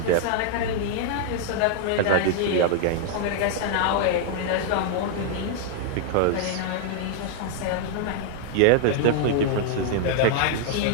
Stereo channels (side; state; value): both; different; correlation -0.01